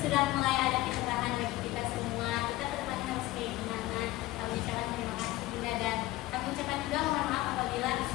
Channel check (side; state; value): right; quieter; 17.6 dB